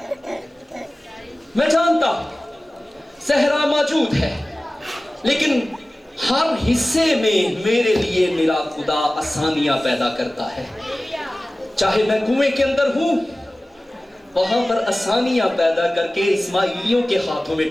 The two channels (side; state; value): both; normal; correlation 0.97